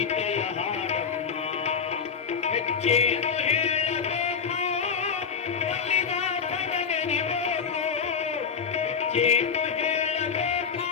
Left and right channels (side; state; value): right; quieter; 6.4 dB